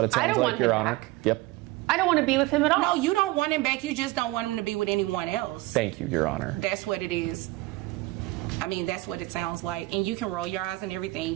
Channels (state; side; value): quieter; left; 20.0 dB